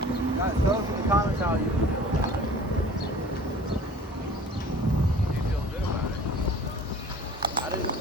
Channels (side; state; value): both; normal; correlation 0.46